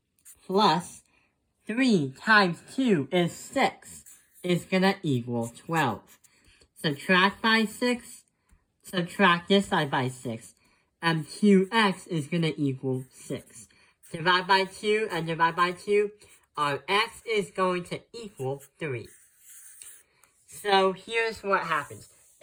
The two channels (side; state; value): both; identical; correlation 1.00